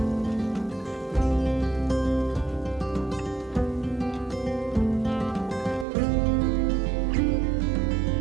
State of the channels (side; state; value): left; drops out; at 5.9 s